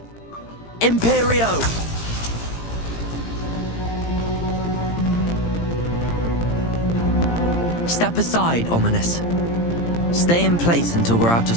Imperio! Step aside, Ominous. Stay in place until we're out of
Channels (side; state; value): right; late; 17 ms